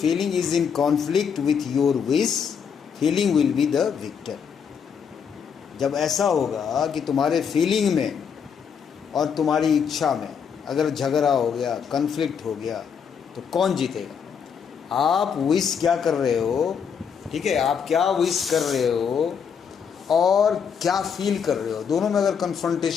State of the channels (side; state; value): right; quieter; 6.9 dB